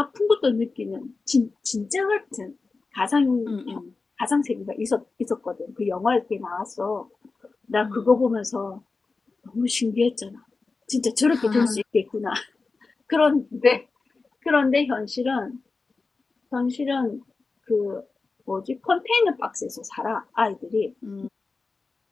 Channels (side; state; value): right; quieter; 4.0 dB